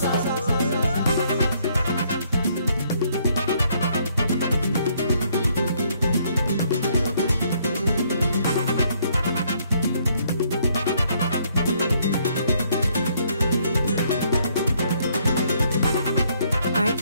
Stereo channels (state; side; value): inverted; both; correlation -0.68